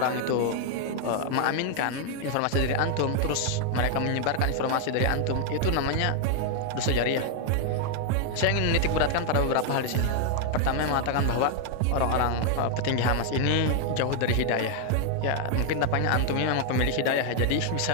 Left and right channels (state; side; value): different; both; correlation 0.00